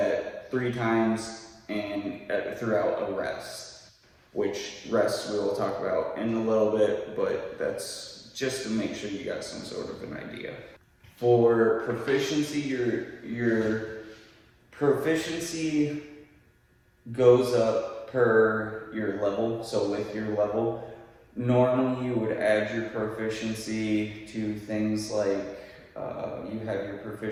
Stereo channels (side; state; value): both; identical; correlation 1.00